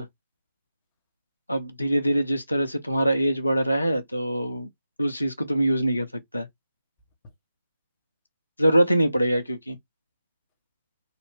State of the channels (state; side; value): inverted; both; correlation -0.91